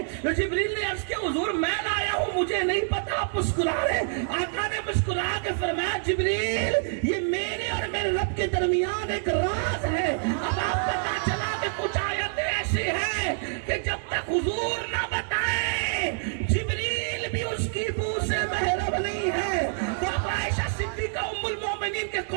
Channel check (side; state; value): left; silent; digital silence